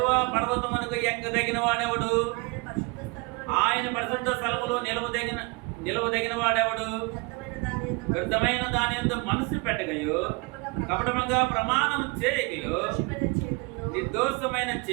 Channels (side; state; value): left; quieter; 28.7 dB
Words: పర్వతమునకు ఎక్కదగిన వాడెవడు? ఆయన పరిశుద్ధ స్థలములో నిలవదగిన వాడెవడు? వ్యర్థమైన దాని యందు మనసు పెట్టగయో, కపటముగా ప్రమాణం చేయగయో, నిర్దోషమైన